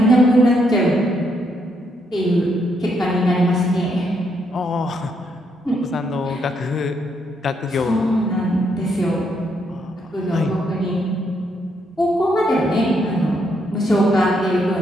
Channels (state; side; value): normal; both; correlation 0.76